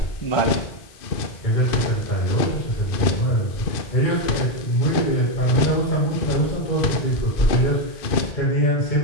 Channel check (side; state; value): right; late; 2.5 ms